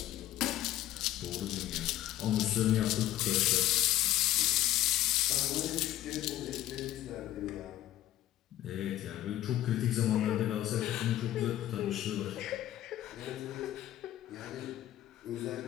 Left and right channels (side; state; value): right; quieter; 13.5 dB